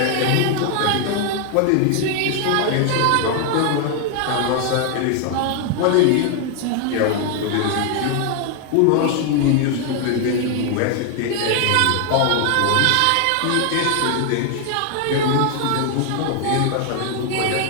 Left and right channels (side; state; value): both; different; correlation 0.00